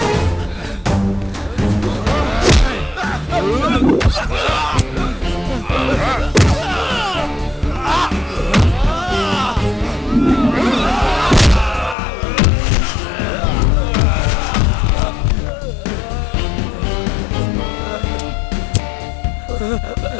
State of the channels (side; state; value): right; drops out; at 12.0 s